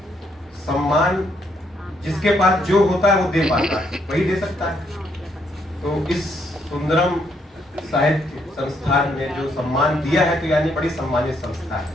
सम्मान जिसके पास जो होता है वो दे पाता है, वही दे सकता है। तो इस सुंदरम साहित्य संस्थान में जो सम्मान दिया है, तो यानी बड़ी सम्मानित संस्था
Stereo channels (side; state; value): both; normal; correlation 0.73